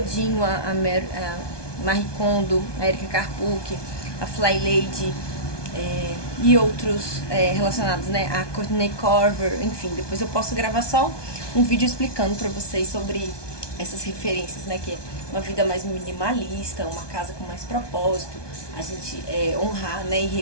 a Marie Kondo, a Erika Karpuk, a Fly Lady, e outros relacionados, né, a Courtney Corver, enfim, depois eu posso gravar só um vídeo explicando pra vocês sobre essas referências, né, que é uma vida mais minimalista, uma casa com mais propósito, a gente honrar, né, e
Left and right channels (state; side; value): late; right; 1.2 ms